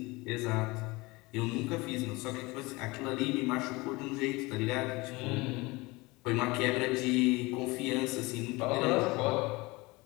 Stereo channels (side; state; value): right; quieter; 23.4 dB